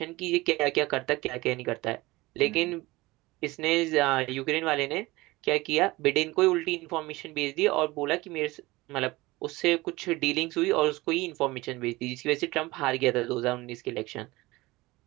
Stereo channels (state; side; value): quieter; left; 20.7 dB